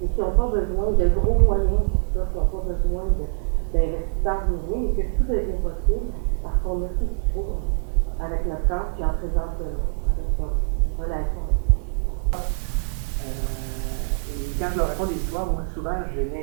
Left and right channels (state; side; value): silent; left; digital silence